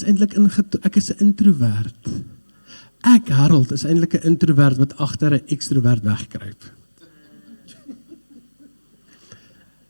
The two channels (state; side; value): inverted; both; correlation -1.00